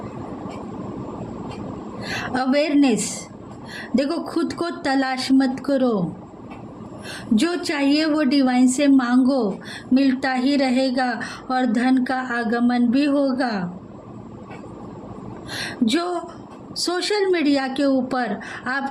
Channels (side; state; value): both; identical; correlation 1.00